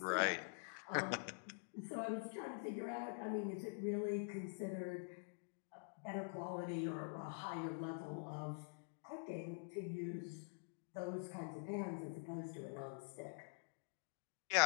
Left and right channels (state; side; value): silent; right; digital silence